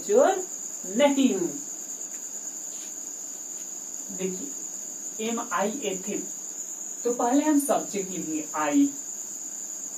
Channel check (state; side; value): identical; both; correlation 1.00